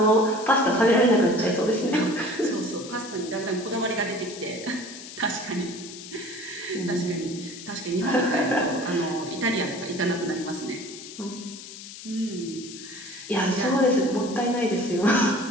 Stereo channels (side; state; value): left; noise; hiss, 13 dB below the sound